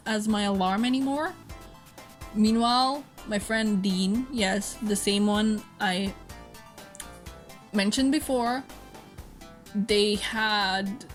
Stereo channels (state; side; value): identical; both; correlation 1.00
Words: as my alarm anymore. Meanwhile, my friend Dean, yes, the same one I mentioned before, they had